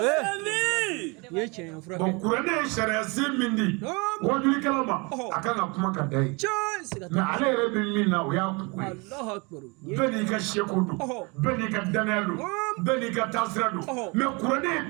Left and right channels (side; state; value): left; quieter; 28.6 dB